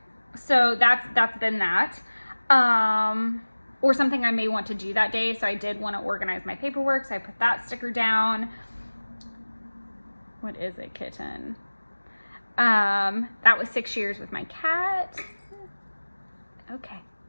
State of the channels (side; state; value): both; inverted; correlation -1.00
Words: So that's been that. Or something I may want to do that day. So I did want to organize my paperwork, so I put that sticker down. What is it, kitten? That was 6 years with my cat. Okay.